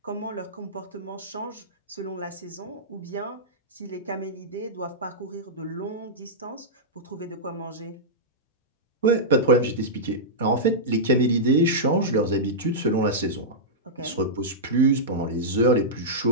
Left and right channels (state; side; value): normal; both; correlation -0.12